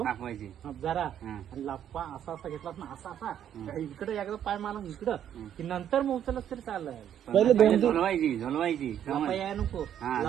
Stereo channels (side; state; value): left; quieter; 10.0 dB